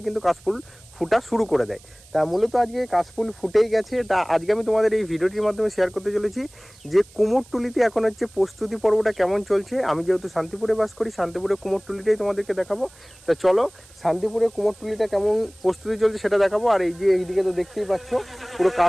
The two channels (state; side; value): noise; right; hiss, 25 dB below the sound